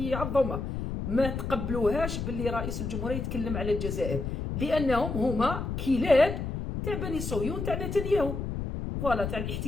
ما تقبلوهاش باللي رئيس الجمهورية يتكلم على الجزائر لأنهم هما كلاب تاع بني صهيون تاع نتنياهو فوالا تاع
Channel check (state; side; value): noise; left; rumble, 4 dB below the sound